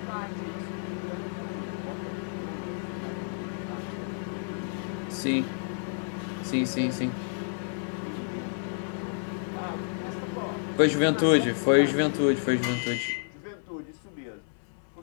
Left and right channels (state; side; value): silent; right; 58 dB below the other